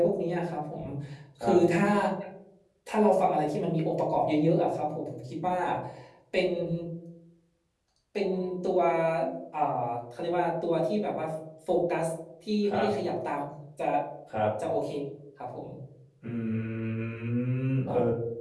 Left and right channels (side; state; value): both; identical; correlation 1.00